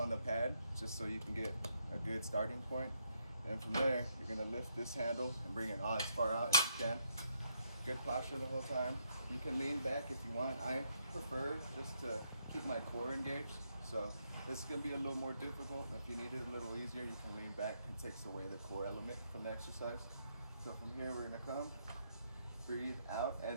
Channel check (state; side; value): inverted; both; correlation -0.76